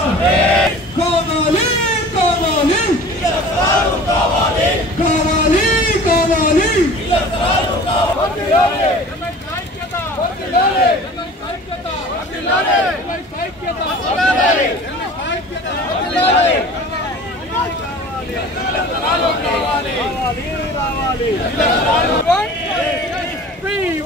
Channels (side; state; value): both; normal; correlation 0.42